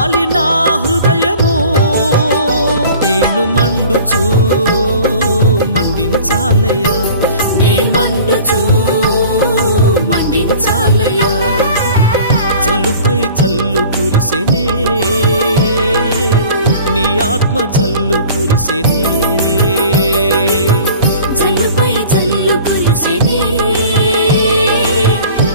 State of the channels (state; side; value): inverted; both; correlation -0.45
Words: నా హృదయము నేను మండుచూ మండించాలయ్యా నే మండుచూ మండించాలయ్యా జల్లుపై జల్లు కురిసెనే నీ ఆత్మ జల్లు కురిసెనే జల్లుపై జల్లు కురిసెనే